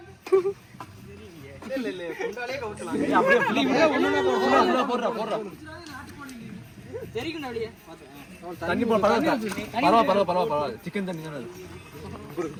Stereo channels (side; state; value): both; identical; correlation 1.00